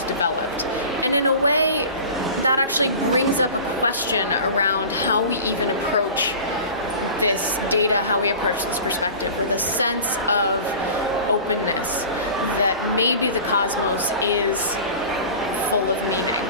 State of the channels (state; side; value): inverted; both; correlation -0.38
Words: developed. And in a way, that actually brings up a question around how we even approach this data, how we approach this perspective, with a sense of openness that maybe the cosmos is full of meaning.